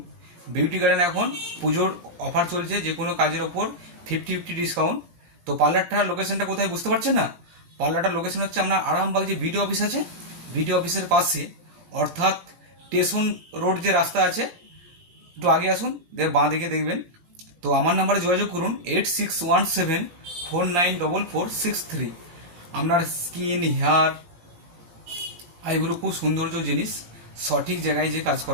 beauty garden এখন পুজোর অফার চলছে, যে কোনো কাজের ওপর 50-50 ডিসকাউন্ট। তো পার্লারটার লোকেশনটা কোথায় বুঝতে পারছেন না? পার্লারটার লোকেশন হচ্ছে আপনার আরামবাগ যে বিডিও অফিস আছে, বিডিও অফিসের পাশে, অর্থাৎ স্টেশন রোড যে রাস্তা আছে, একটু আগে আসুন, বাঁ দিকে দেখবেন। তো আমার নাম্বারে যোগাযোগ করুন 8617494463। আপনার স্কিন, হেয়ার, আইব্রো খুব সৌন্দর্য জিনিস, সঠিক জায়গায় যে কাজ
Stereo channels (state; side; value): late; left; 17 ms